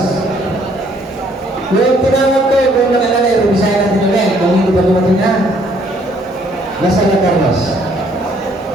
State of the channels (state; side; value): normal; both; correlation 0.64